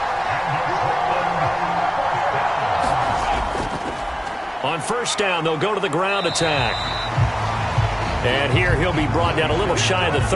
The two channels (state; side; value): identical; both; correlation 1.00